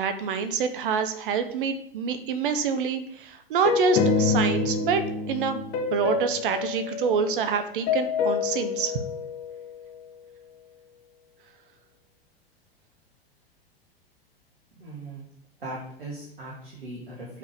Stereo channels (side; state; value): both; normal; correlation 0.20